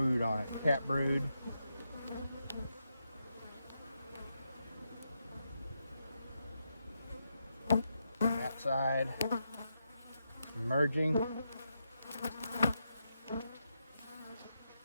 on it, cat brood. That side, emerging.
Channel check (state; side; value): inverted; both; correlation -0.84